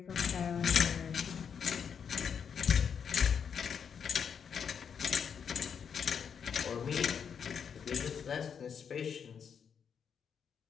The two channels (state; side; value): quieter; right; 7.2 dB